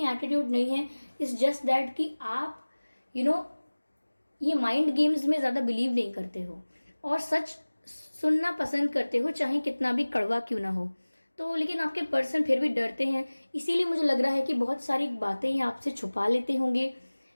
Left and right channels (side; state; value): both; inverted; correlation -1.00